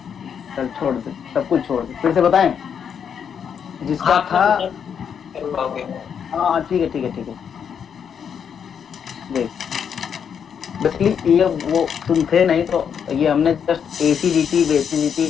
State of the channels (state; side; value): quieter; right; 7.6 dB